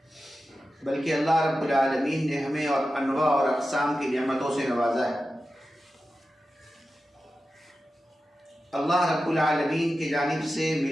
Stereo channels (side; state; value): both; normal; correlation 0.92